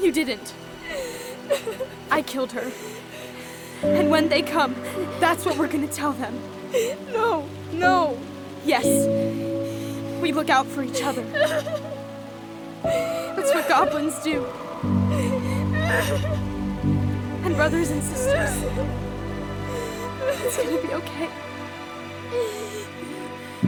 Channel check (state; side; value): identical; both; correlation 1.00